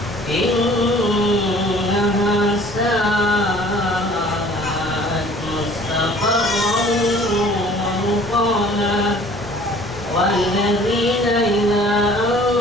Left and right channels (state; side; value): normal; both; correlation 0.51